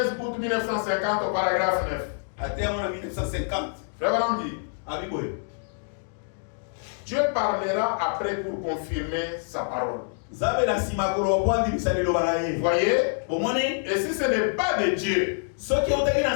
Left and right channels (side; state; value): right; silent; digital silence